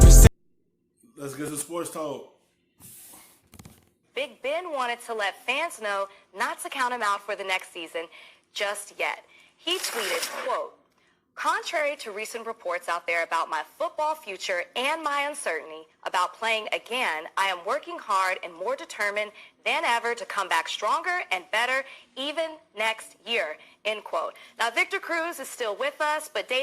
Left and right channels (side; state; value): both; identical; correlation 1.00